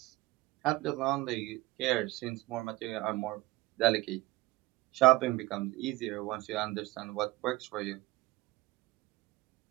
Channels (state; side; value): quieter; left; 19.7 dB